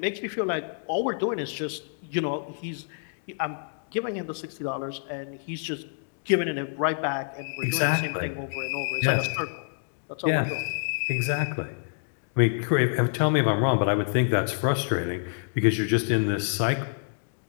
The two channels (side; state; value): right; silent; digital silence